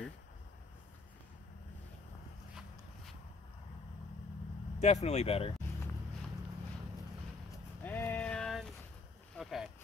Definitely better. And okay.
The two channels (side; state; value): right; quieter; 4.0 dB